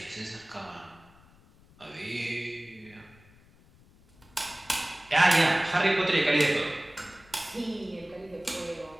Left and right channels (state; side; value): noise; left; rumble, 27 dB below the sound